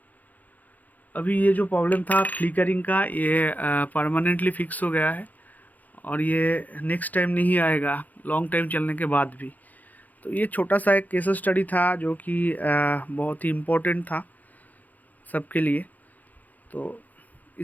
अभी ये जो प्रॉब्लम था फ्लिकरिंग का, ये परमानेंटली फिक्स हो गया है, और ये नेक्स्ट टाइम नहीं आएगा लॉन्ग टाइम चलने के बाद भी। तो ये छोटा सा एक केस स्टडी था जो कि बहुत ही इम्पोर्टेंट था सबके लिए। तो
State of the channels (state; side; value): late; right; 0.081 ms